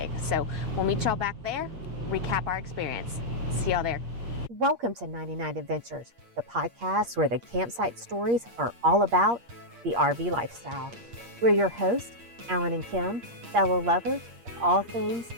So we'll meet y'all back there, recap our experience. See y'all there. Welcome to 99 Adventures, the podcast where the campsite stories are all about the RV lifestyle. We're your hosts, Alan and Kim, fellow lovers of all things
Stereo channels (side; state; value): left; late; 8.5 ms